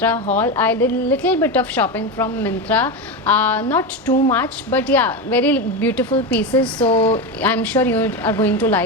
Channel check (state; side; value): normal; both; correlation 0.16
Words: haul. I did a little bit of shopping from Myntra, not too much, but yeah, very beautiful pieces. So I'm sure you are going to